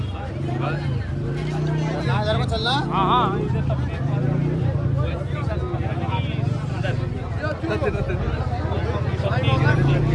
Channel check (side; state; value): both; identical; correlation 1.00